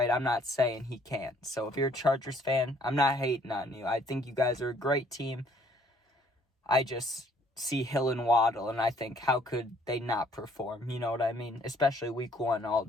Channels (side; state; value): both; normal; correlation 0.62